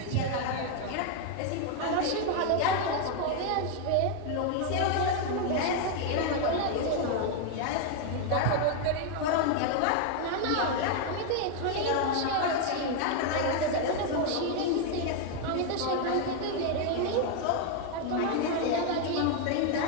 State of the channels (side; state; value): both; different; correlation 0.00